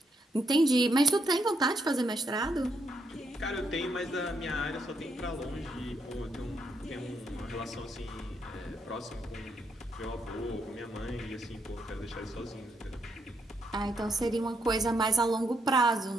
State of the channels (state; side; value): normal; both; correlation 0.78